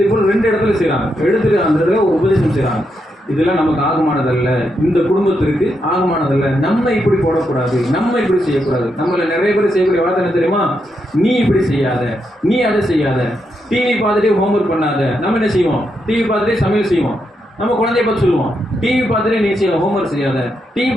போல் 2 இடத்துல செய்யறாங்க, எடுத்துட்டு அந்த இடத்துல ஒரு உபதேசம் செய்யறாங்க. இதெல்லாம் நமக்கு ஆகமானதல்ல, இந்த குடும்பத்திற்கு ஆகமானதல்ல, நம்ம இப்படி போடக்கூடாது, நம்ம இப்படி செய்யக்கூடாது. நம்மள நிறைய பேர் செய்யக்கூடிய வார்த்தை என்ன தெரியுமா, நீ இப்படி செய்யாத, நீ அதை செய்யாத, டிவி பார்த்துட்டே ஹோம்ஒர்க் பண்ணாத. நம்ம என்ன செய்வோம், டிவி பார்த்துட்டே சமையல் செய்வோம். நம்ம குழந்தைய பார்த்து சொல்லுவோம், டிவி பார்த்துட்டே நீ செய்ய ஹோம்ஒர்க் செய்யாத, டிவி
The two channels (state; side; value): normal; both; correlation 0.82